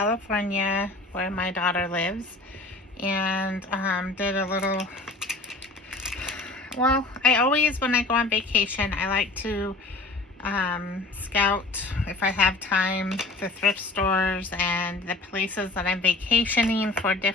where my daughter lives and did a little, well, I always, when I go on vacation, I like to scout, if I have time, the thrift stores and the places that I'm vacationing for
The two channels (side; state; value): right; quieter; 3.1 dB